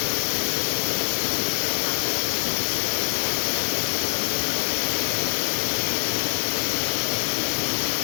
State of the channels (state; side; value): silent; right; digital silence